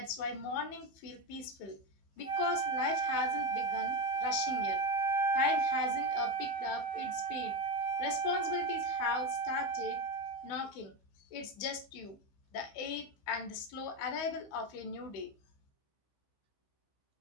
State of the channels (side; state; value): right; late; 16 ms